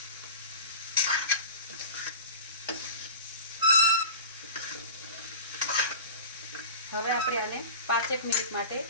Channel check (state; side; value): inverted; both; correlation -0.34